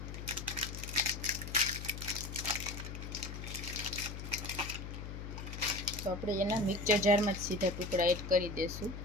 તો આપણે એના મિક્સર જારમાં જ સીધા ટુકડા એડ કરી દઈશું.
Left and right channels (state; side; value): noise; left; hum, 8 dB below the sound